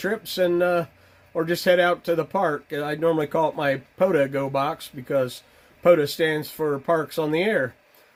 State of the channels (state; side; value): identical; both; correlation 1.00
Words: and or just head out to the park. I normally call it my POTA Go Box because POTA stands for Parks on the Air.